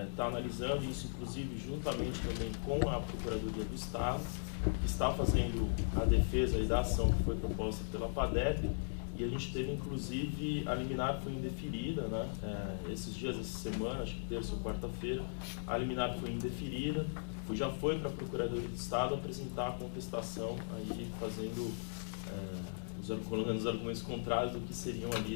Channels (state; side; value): silent; right; digital silence